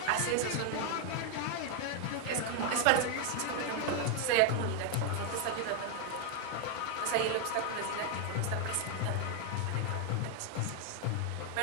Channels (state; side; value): different; both; correlation 0.01